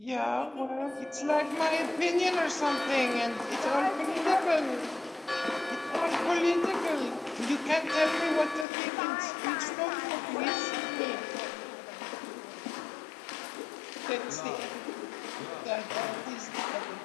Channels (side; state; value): right; drops out; at 8.7 s